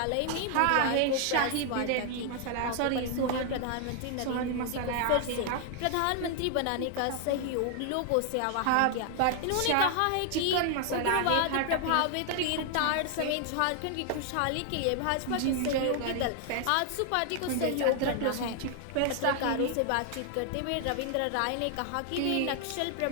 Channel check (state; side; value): different; both; correlation 0.00